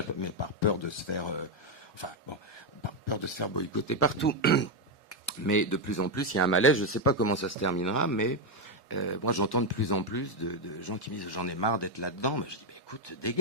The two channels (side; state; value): both; normal; correlation 0.04